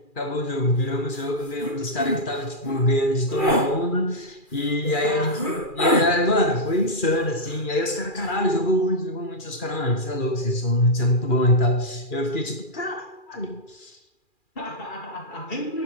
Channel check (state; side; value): late; right; 2.4 ms